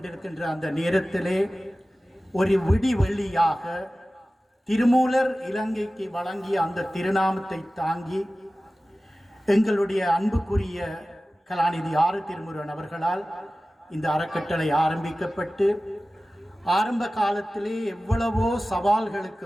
அந்த நேரத்திலே ஒரு விடிவெள்ளியாக திருமூலர் இலங்கைக்கு வழங்கிய அந்த திருநாமத்தை தாங்கி எங்களுடைய அன்புக்குரிய கலாநிதி ஆறு திருமுருகன் அவர்களால் இந்த அறக்கட்டளை ஆரம்பிக்கப்பட்டு ஆரம்ப காலத்திலே எவ்வளவோ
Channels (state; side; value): normal; both; correlation 0.96